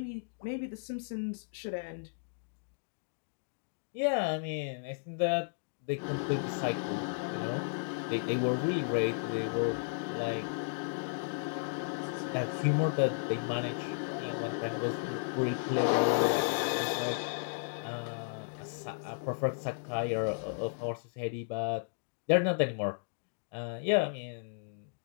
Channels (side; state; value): right; silent; digital silence